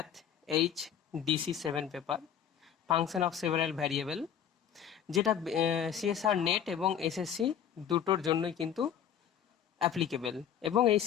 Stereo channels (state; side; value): quieter; right; 8.9 dB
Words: HDC 7 paper function of several variable, যেটা CSR নেট এবং SSC দুটোর জন্যই কিন্তু অ্যাপ্লিকেবল এবং এই